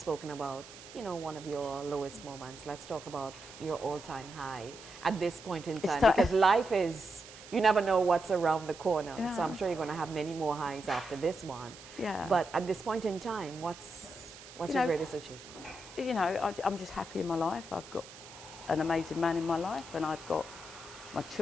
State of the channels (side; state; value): right; noise; hiss, 17 dB below the sound